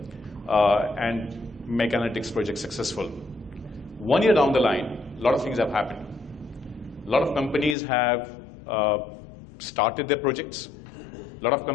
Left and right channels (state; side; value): drops out; right; at 7.8 s